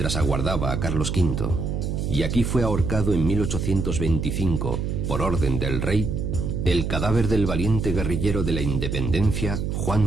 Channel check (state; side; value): noise; right; hum, 2 dB below the sound